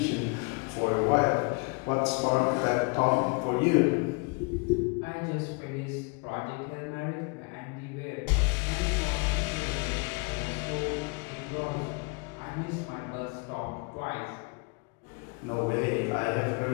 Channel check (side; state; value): right; quieter; 31.4 dB